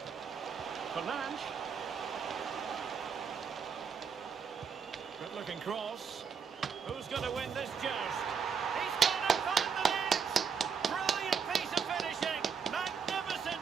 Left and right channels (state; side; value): quieter; left; 6.5 dB